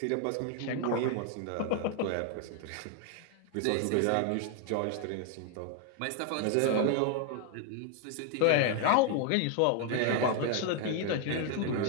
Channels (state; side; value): different; both; correlation 0.00